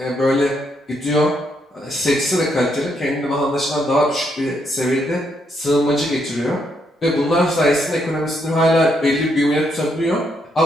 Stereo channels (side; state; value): both; normal; correlation 0.76